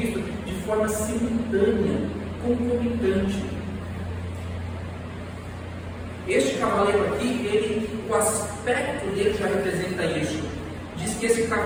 de forma simultânea, concomitante. Este cavaleiro aqui, o aspecto dele já representa isso. Diz que esse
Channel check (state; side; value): identical; both; correlation 1.00